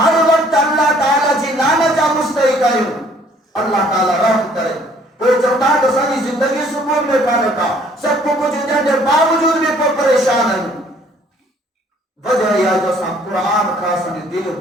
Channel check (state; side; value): normal; both; correlation 0.60